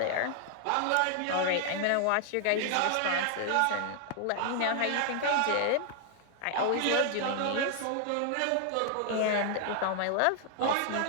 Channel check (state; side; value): different; both; correlation 0.00